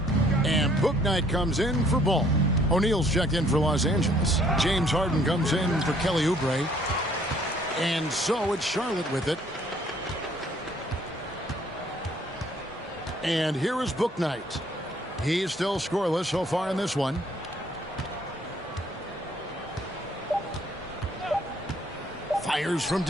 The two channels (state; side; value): normal; both; correlation 0.62